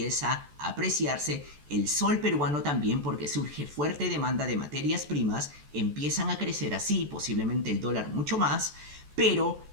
a apreciarse, el sol peruano también porque surge fuerte demanda de materias primas, empiezan a crecer así, posiblemente el dólar mucho más, pero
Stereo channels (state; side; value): late; left; 14 ms